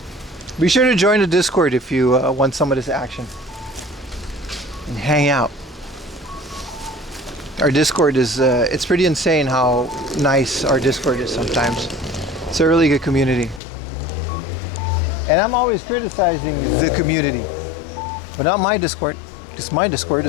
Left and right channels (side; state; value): right; drops out; at 13.6 s